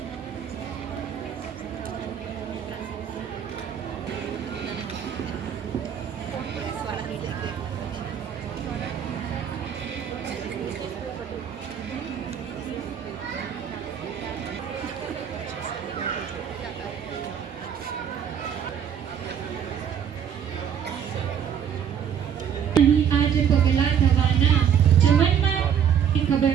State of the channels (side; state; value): left; quieter; 8.3 dB